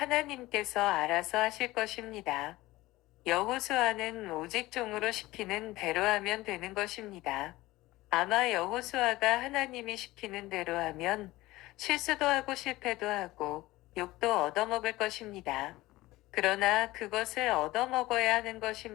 알아서 하실 것입니다. 여호수아는 오직 종으로 시키는 대로 하면 되는 것입니다. 아마 여호수아가 하나님이 시키는 대로 하면 실수도 하고 실패도 하고 욕도 얻어먹을 것입니다. 그러나 그것을 얻어먹어야 하는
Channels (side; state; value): right; quieter; 18.5 dB